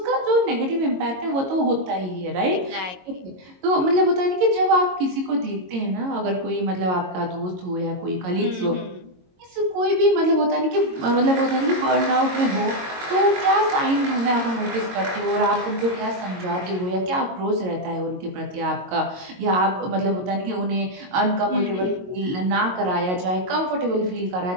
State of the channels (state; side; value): late; left; 22 ms